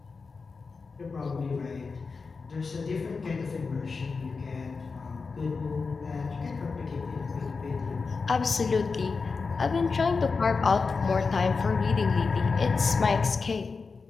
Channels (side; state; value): right; quieter; 4.6 dB